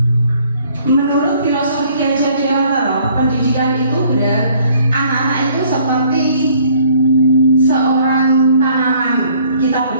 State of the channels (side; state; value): both; inverted; correlation -0.60